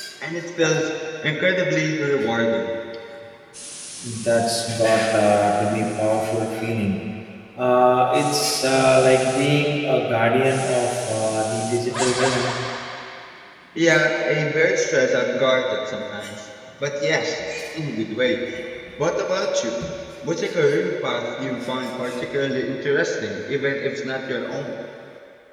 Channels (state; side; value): identical; both; correlation 1.00